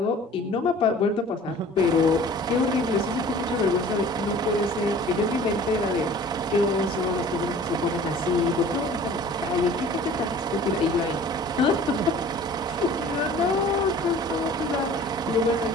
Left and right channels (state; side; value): normal; both; correlation 0.47